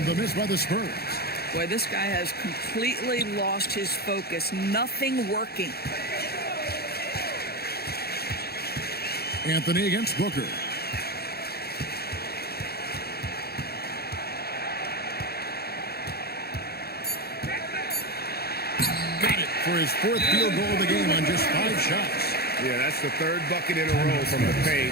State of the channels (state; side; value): late; right; 0.46 ms